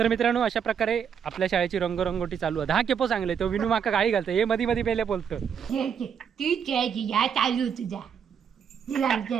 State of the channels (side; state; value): left; quieter; 7.5 dB